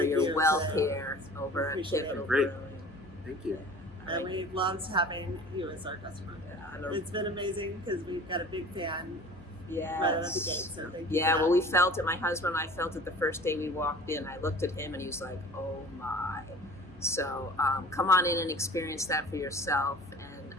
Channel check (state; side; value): normal; both; correlation 0.43